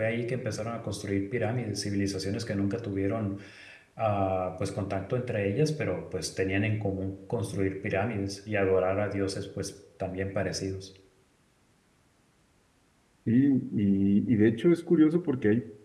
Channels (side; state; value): both; identical; correlation 1.00